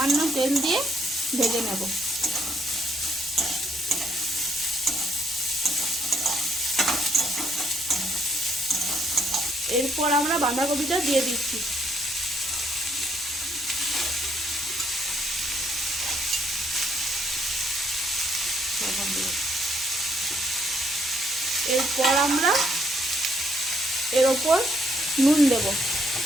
তেল দিয়ে ভেজে নেব। এরপর আমরা বাঁধাকপিটা দিয়ে দিচ্ছি। এরপর আমরা এর ওপর নুন দেব।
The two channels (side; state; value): both; normal; correlation 0.71